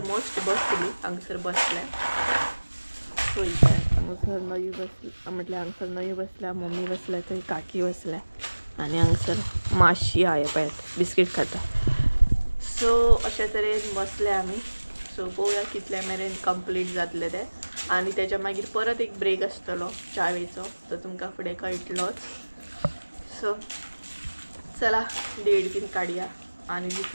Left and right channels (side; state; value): both; inverted; correlation -1.00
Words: बसतली. हांगसर बसल्या सो हांगसर नयू बसल्या, म्हटल्यार हांगसर नयू बसल्या, मम्मी बसल्या, थंय काकी बसल्या आनी हांगसर माशी आहा पळयात बिस्कीट खाता. सो अशे तरेन बसले आमी. सो पळोवया कितले मेरेन कंप्लीट जातले ते. आनी तेच्या मागीर परत एक ब्रेक आसतलो चावेचो, तो तुमकां फुडें कळटलोच. सो चला देड बीन काडया आनी